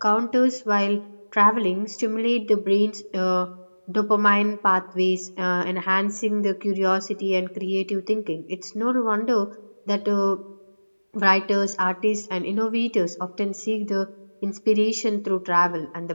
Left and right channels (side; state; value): both; inverted; correlation -1.00